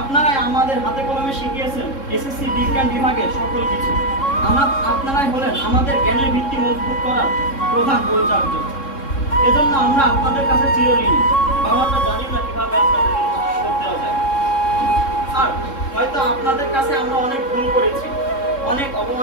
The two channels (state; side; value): late; right; 3.7 ms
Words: আমাদের হাতে কলমে শিখিয়েছেন এসএসসি বিজ্ঞান বিভাগের সকল কিছু। আপনারাই হলেন আমাদের জ্ঞানের ভিত্তি মজবুত করার প্রধান পরিচার্য। এজন্য আমরা আপনাদের কাছে চিরঋণী। আমরা জানি না কিভাবে আপনাদের ঋণ শোধ দেওয়া যায়। স্যার, হয়তো আপনাদের কাছে আমরা অনেক ভুল করেছি, অনেক